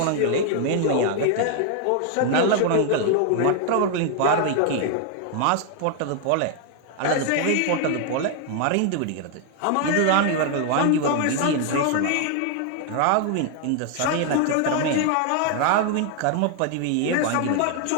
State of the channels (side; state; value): both; different; correlation 0.00